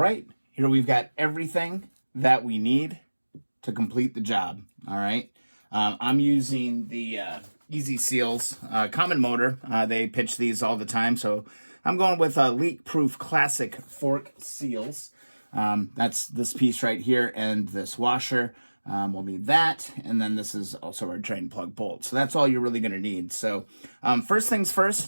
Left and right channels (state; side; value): inverted; both; correlation -1.00